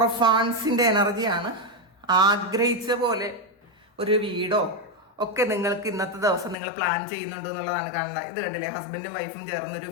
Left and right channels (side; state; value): right; drops out; at 6.6 s